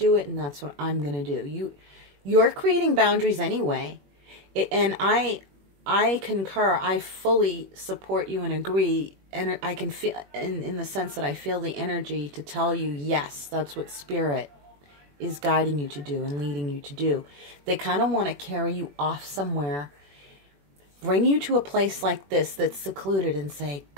it, and that's what I'm going to do. You're creating boundaries anyway. And I concur. I fully support you and agree. And I can feel, in the sense that I feel the energy to tell you, yes, that's what spirit is guiding you to do and leading you to do. They kind of want to carry you off somewhere, bring you to a place like this that's secluded and say,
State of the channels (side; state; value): left; late; 21 ms